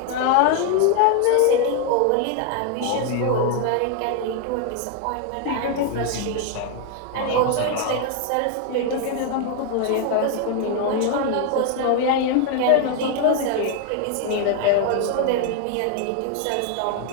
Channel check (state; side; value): different; both; correlation 0.00